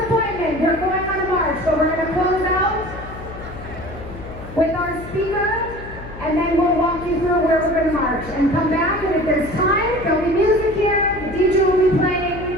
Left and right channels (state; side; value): noise; left; hum, 13 dB below the sound